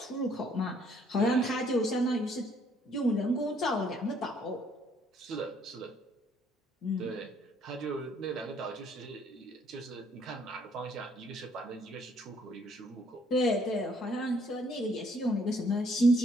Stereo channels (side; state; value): both; normal; correlation 0.65